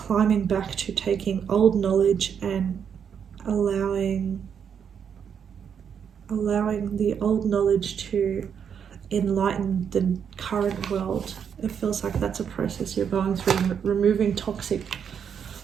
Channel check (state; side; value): quieter; left; 7.6 dB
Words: back to taking old knowledge and allowing the old knowledge to enlighten the current world. It feels like that's a process you're going through, removing toxic